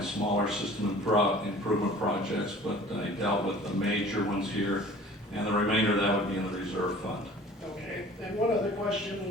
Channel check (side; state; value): both; normal; correlation 0.47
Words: smaller system improvement projects, but I dealt with the major ones here, and the remainder of that would be in the reserve fund. Okay, and one other